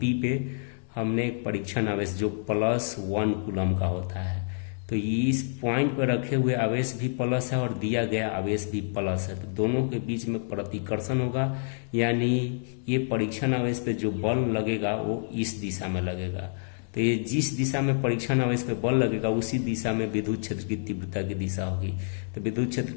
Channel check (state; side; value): silent; right; digital silence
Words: पे हमने एक परीक्षण आवेश जो +1 कूलम का होता है, तो इस पॉइंट पर रखे हुए आवेश भी प्लस है और दिया गया आवेश भी प्लस है, तो दोनों के बीच में प्रतिकर्षण होगा। यानी ये परीक्षण आवेश पे जो बल लगेगा वो इस दिशा में लगेगा। तो ये जिस दिशा में परीक्षण आवेश पे बल लगेगा उसी दिशा में विद्युत क्षेत्र की तीव्रता की दिशा होगी। तो विद्युत क्षेत्र